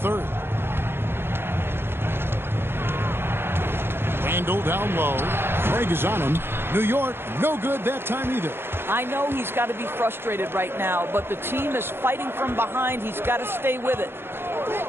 Randall down low. Craig is on him. New York, no good that time either. I know he's got to be frustrated right now, but the team is fighting from behind. He's got to stay with it.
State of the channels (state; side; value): late; left; 0.11 ms